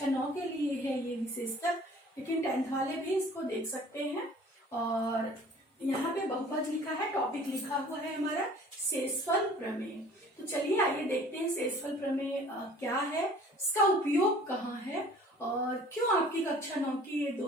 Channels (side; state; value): both; normal; correlation 0.50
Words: 9 के लिए है ये विशेषतः, लेकिन 10th वाले भी इसको देख सकते हैं। और यहाँ पे बहुपद लिखा है, टॉपिक लिखा हुआ है हमारा शेषफल प्रमेय। तो चलिए आइए देखते हैं शेषफल प्रमेय क्या है, इसका उपयोग कहाँ है और क्यों आपकी कक्षा 9 की ये